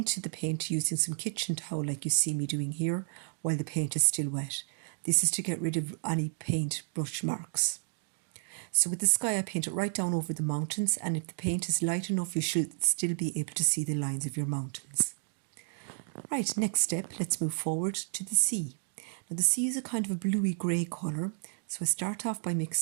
the paint using some kitchen towel like you see me doing here while the paint is still wet. This is to get rid of any paint brush marks. So with the sky I paint it right down over the mountains, and if the paint is light enough you should still be able to see the lines of your mountains. Right, next step, let's move forward to the sea. Now the sea is a kind of a bluey grey colour, so I start off by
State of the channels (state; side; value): silent; left; digital silence